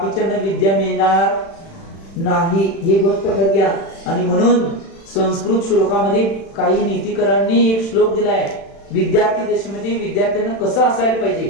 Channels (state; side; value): late; right; 36 ms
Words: विद्या मिळणार नाही, ही गोष्ट लक्षात घ्या. आणि म्हणून संस्कृत श्लोकामध्ये काही नीतिकरांनी एक श्लोक दिलाय, विद्यार्थी दशेमध्ये विद्यार्थ्यांना कसं असायला पाहिजे.